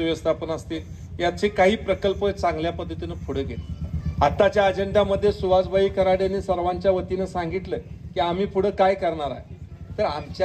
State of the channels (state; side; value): identical; both; correlation 1.00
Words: व्यवस्थापन असतील, याचे काही प्रकल्प चांगल्या पद्धतीनं पुढे गेले. आताच्या अजेंड्यामध्ये सुहासभाई कराडेंनी सर्वांच्या वतीनं सांगितलं की आम्ही पुढे काय करणार आहे. तर